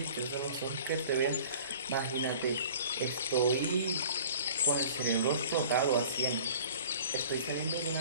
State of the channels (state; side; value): inverted; both; correlation -0.46